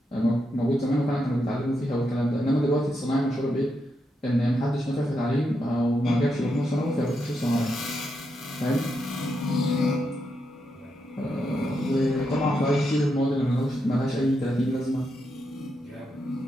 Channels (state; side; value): normal; both; correlation 0.83